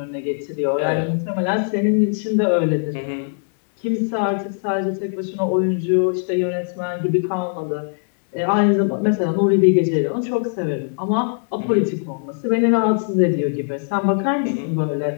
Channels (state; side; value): silent; right; digital silence